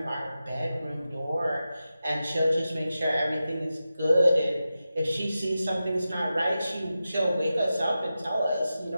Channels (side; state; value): both; inverted; correlation -0.92